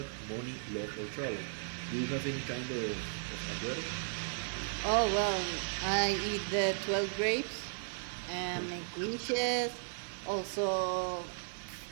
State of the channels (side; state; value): left; silent; 54 dB below the other